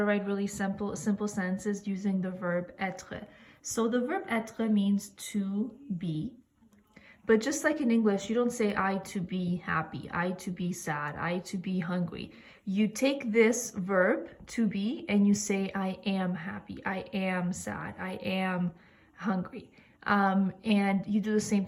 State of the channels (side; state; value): both; identical; correlation 1.00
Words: write really simple sentences using the verb être. So the verb être means to be, but just like in English, you don't say I to be happy, I to be sad, I to be hungry. You take this verb to be and you say I am happy, I am sad, I am hungry. And you do the same